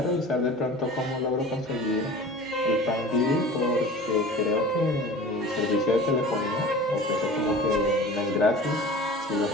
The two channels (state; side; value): normal; both; correlation 0.40